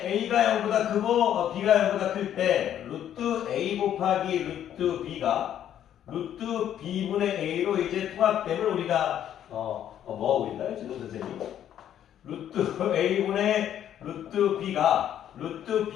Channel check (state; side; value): quieter; right; 10.5 dB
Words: a가 0보다 크고 b가 0보다 클 때 루트 a 곱하기 루트 b가 루트 b분의 a로 이제 통합됨을 우리가 뭐 하고 있나요? 지금 선생님? 루트 a분의 루트 b가 루트